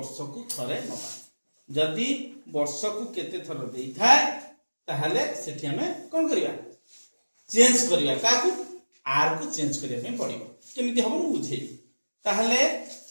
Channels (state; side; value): inverted; both; correlation -1.00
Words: को थरे नबा। जदि वर्ष को केते थर देई थाए ताहले सेठी हमें कोन करिया चेंज करिया काकू आर को चेंज करिया में पड़िबो। केमिति हबो बुझेई ताहले